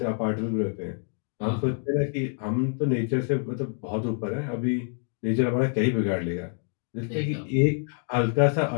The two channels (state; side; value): silent; right; 57 dB below the other